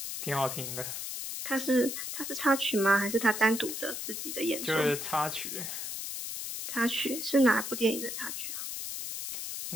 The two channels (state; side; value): noise; left; hiss, 5 dB below the sound